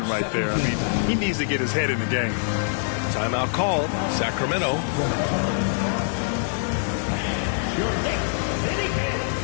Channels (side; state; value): right; silent; 62 dB below the other